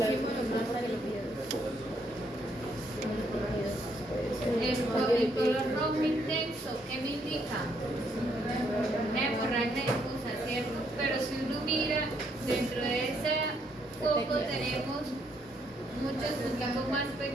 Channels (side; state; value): both; normal; correlation 0.72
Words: los más para que lo pidas. El color rojo intenso, ¿qué me indica? Hemorragia difusa, ¿cierto? Pero si uno mira, dentro de ese foco tenemos muchos punticos más